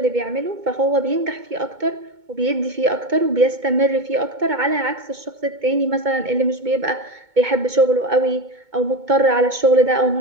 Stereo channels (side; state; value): left; late; 2.2 ms